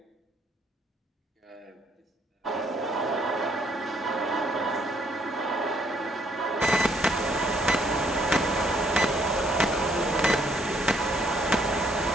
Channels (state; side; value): normal; both; correlation 0.67